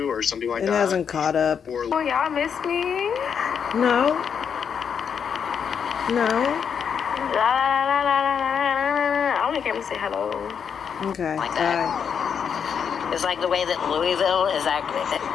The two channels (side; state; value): right; quieter; 7.2 dB